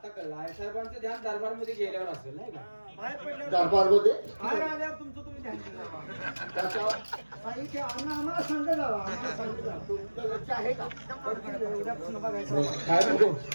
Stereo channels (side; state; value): both; inverted; correlation -1.00